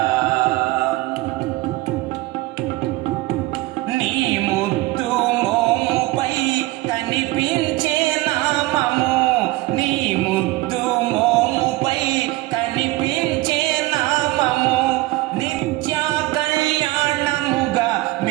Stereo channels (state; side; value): quieter; left; 19.2 dB